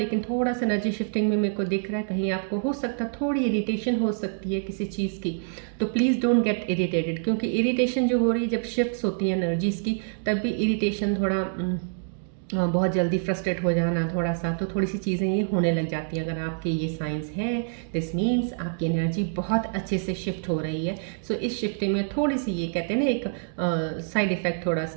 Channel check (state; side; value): silent; left; digital silence